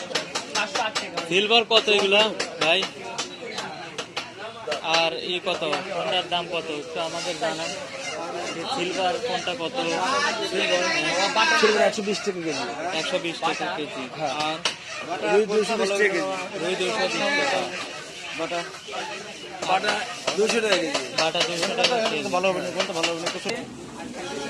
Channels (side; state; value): both; identical; correlation 1.00